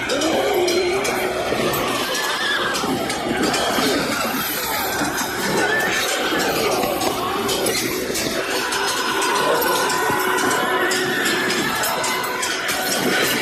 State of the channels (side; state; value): both; identical; correlation 1.00